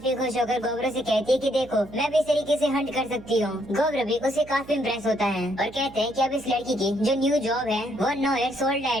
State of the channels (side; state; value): right; noise; hum, 19 dB below the sound